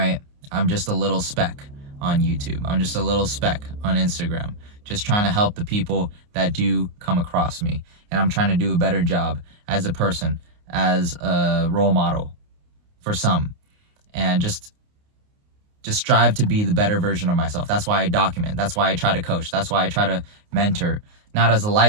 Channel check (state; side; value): late; left; 29 ms